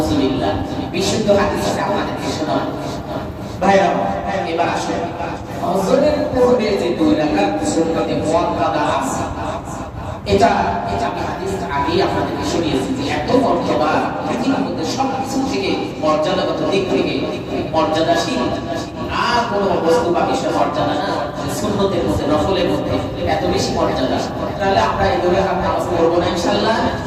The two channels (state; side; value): identical; both; correlation 1.00